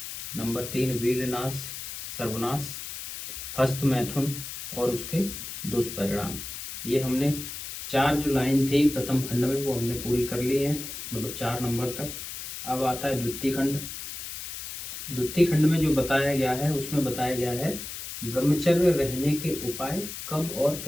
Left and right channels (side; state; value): left; noise; hiss, 8 dB below the sound